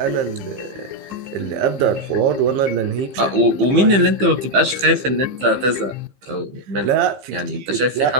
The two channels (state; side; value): late; left; 15 ms